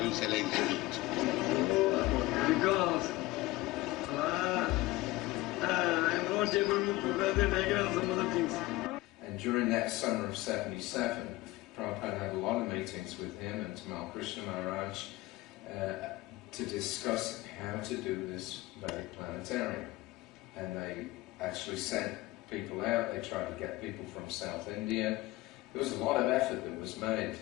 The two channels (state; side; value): quieter; right; 18.6 dB